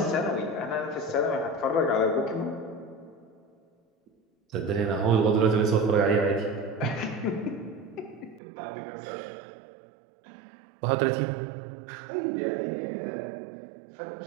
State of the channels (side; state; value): left; drops out; at 8.4 s